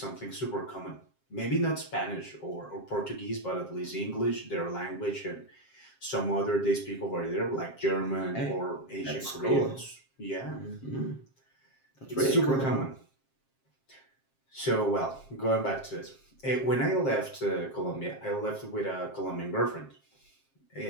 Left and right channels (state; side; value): late; right; 7.5 ms